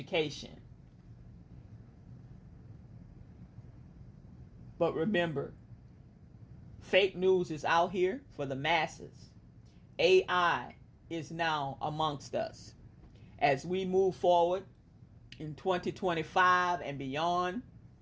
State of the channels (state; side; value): identical; both; correlation 1.00